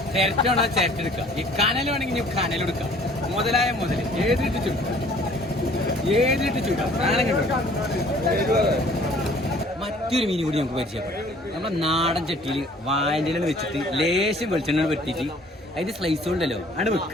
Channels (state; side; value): normal; both; correlation 0.55